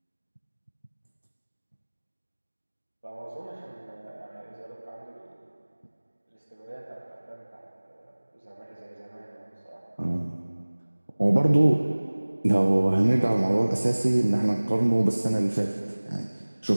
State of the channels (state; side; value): inverted; both; correlation -1.00